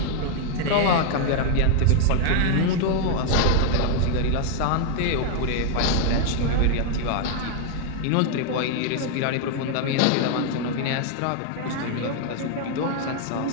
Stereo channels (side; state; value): both; different; correlation 0.00